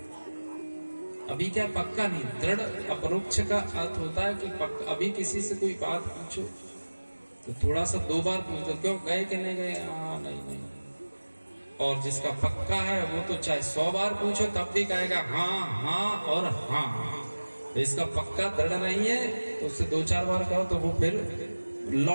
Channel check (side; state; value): both; inverted; correlation -1.00